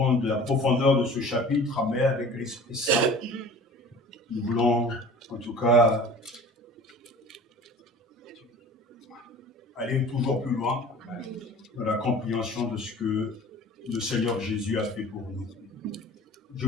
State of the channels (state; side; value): normal; both; correlation 0.43